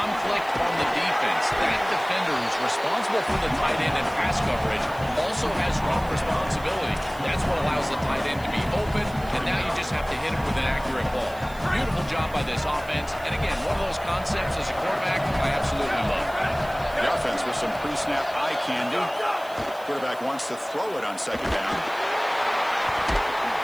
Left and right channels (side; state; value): right; noise; hiss, 22 dB below the sound